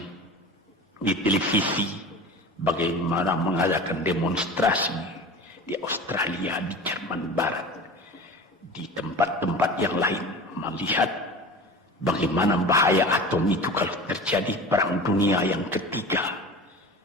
televisi bagaimana mengadakan demonstrasi di Australia, di Jerman Barat, di tempat-tempat yang lain, melihat bagaimana bahaya atom itu kalau terjadi perang dunia yang ketiga.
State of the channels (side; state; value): both; normal; correlation 0.35